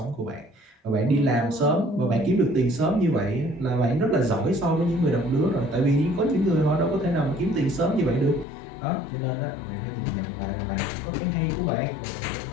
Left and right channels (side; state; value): right; drops out; at 8.5 s